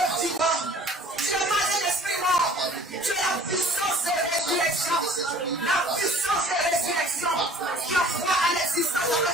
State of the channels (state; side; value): normal; both; correlation 0.49